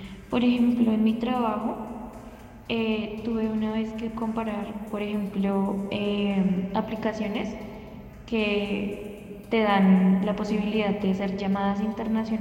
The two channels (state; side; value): identical; both; correlation 1.00